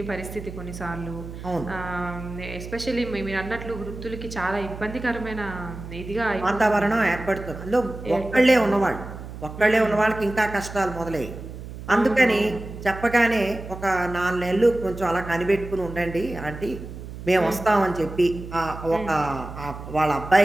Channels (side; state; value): right; noise; hum, 11 dB below the sound